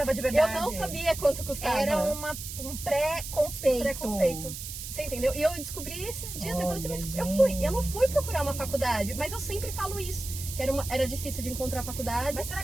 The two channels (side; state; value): right; noise; hiss, 8 dB below the sound